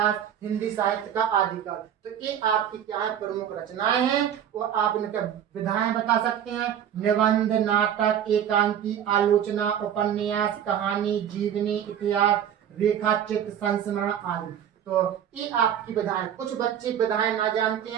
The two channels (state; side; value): quieter; left; 9.5 dB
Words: हिंदी साहित्य का आदिकाल, तो ये आपकी क्या है प्रमुख रचनाएं हैं। और आप इनके विधाएं बता सकते हैं, निबंध, नाटक, एकांकी, आलोचना, उपन्यास, कहानी, जीवनी, इतिहास, रेखा चित्र, संस्मरण आदि। तो ये आपकी विधाएं। कुछ बच्चे विधाएं ना जानते